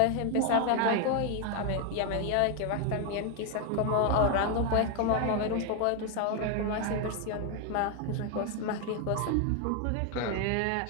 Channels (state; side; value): different; both; correlation 0.01